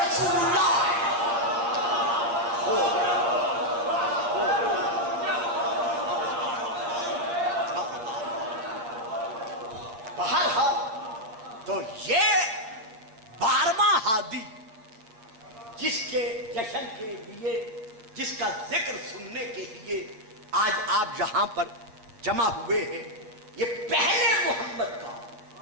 اللہ ہے۔ بہرحال تو یہ 12واں ہادی جس کے جشن کے لیے، جس کا ذکر سننے کے لیے آج آپ یہاں پر جمع ہوئے ہیں، یہ پہلے محمد کا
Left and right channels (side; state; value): left; late; 8.8 ms